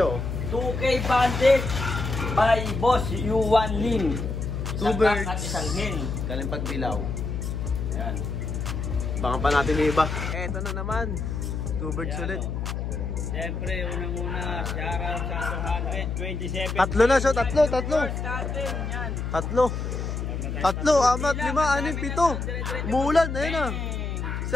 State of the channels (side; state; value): left; noise; hum, 3 dB below the sound